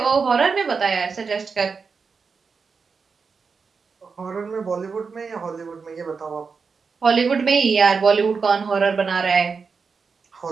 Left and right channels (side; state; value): left; quieter; 5.2 dB